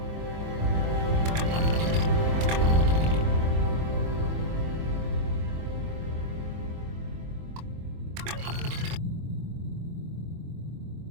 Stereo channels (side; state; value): left; late; 24 ms